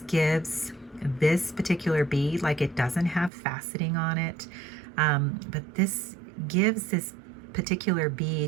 gives this particular bead, like it doesn't have faceting on it, but this gives this particular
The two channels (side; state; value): left; drops out; at 3.3 s